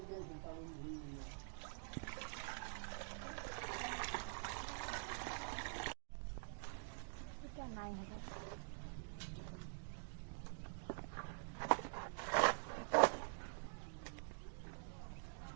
এটা নাই হবে।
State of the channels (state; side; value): silent; left; digital silence